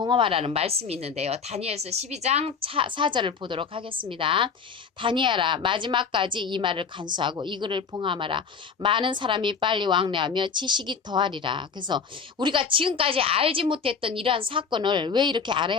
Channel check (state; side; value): quieter; right; 5.9 dB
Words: 말씀이 있는데요. 다니엘서 12장 4절을 보도록 하겠습니다. 다니엘아 마지막까지 이 말을 간수하고 이 글을 봉헌하라. 많은 사람이 빨리 왕래하며 지식이 더하리라. 그래서 우리가 지금까지 알지 못했던 이러한 사건을 왜 이렇게